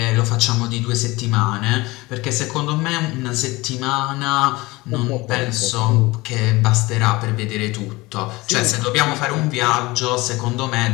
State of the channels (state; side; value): quieter; right; 21.8 dB